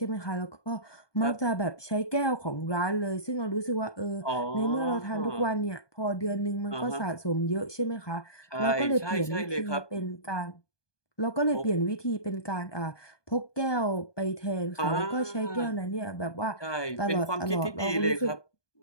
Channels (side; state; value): right; late; 1.2 ms